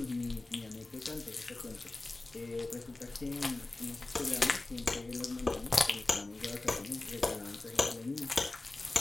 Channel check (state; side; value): quieter; right; 3.0 dB